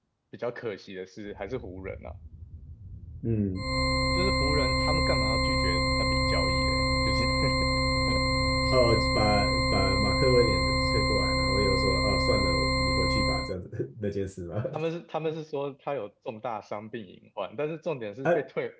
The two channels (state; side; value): identical; both; correlation 1.00